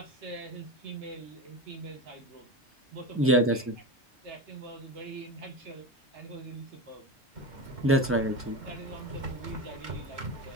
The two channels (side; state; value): both; normal; correlation 0.21